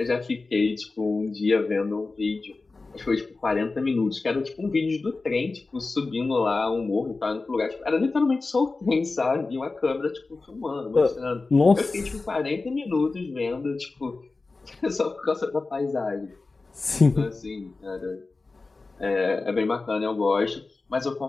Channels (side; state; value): right; quieter; 3.7 dB